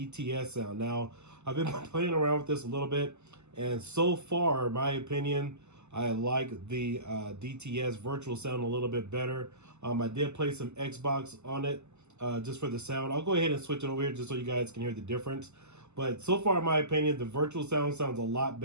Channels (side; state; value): left; late; 0.82 ms